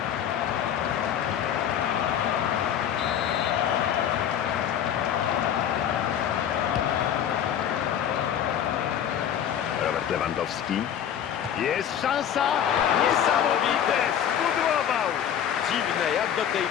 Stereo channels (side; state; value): right; quieter; 9.4 dB